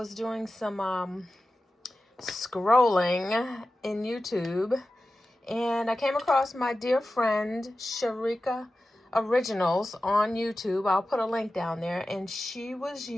doing some scrolling in YouTube, and I came across my dear friend Sharika Originals on YouTube. I'll put a link down there, and she was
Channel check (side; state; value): both; normal; correlation 0.94